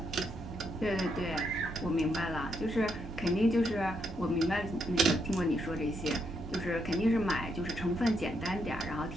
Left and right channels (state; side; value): normal; both; correlation 0.78